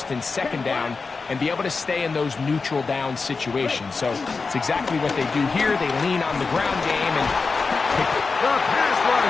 and second down and be able to stay in those neutral down situations. So it's exactly what they do here. They lean on the ground game and the pass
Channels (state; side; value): quieter; right; 4.4 dB